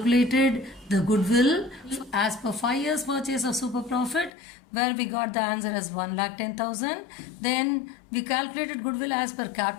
the goodwill as per 5 years purchase of super profit where we got the answer as 1,10,000. Then we calculated goodwill as per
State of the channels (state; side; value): drops out; right; at 4.3 s